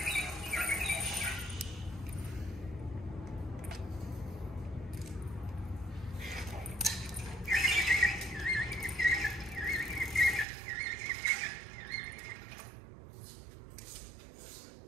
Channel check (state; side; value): drops out; left; at 10.5 s